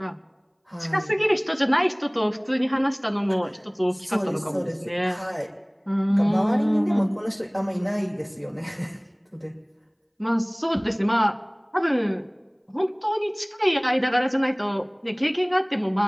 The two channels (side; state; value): both; identical; correlation 1.00